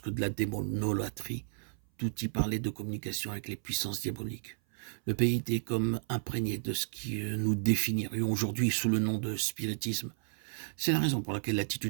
que de la démonolâtrie. Tout y parlait de communication avec les puissances diaboliques. Le pays était comme imprégné de ce que nous définirions aujourd'hui sous le nom de spiritisme. C'est la raison pour laquelle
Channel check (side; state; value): left; silent; 56 dB below the other